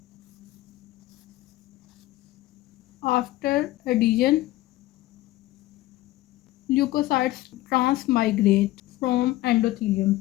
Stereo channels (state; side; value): quieter; right; 16.9 dB